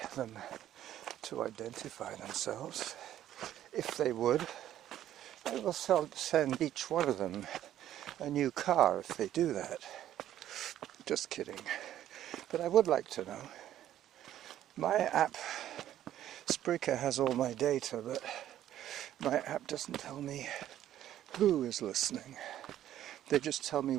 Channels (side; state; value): left; quieter; 12.0 dB